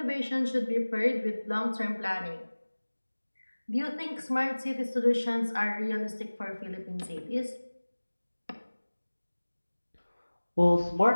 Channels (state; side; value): inverted; both; correlation -1.00